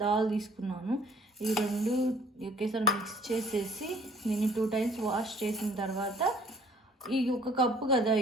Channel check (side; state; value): both; normal; correlation 0.57